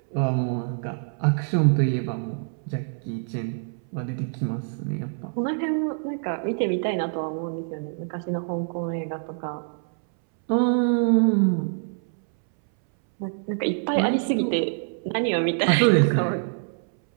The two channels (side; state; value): left; silent; 62 dB below the other